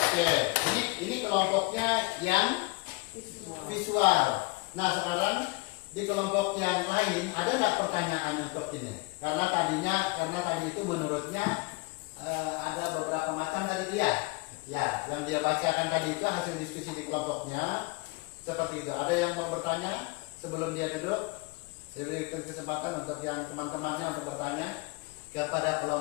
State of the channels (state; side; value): quieter; right; 26.1 dB